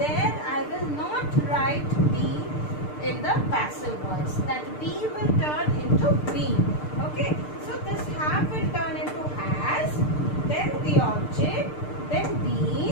I will not write be in the passive voice. That be will turn into been. Okay, so this have will turn into has, then the object, then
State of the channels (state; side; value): late; right; 6.7 ms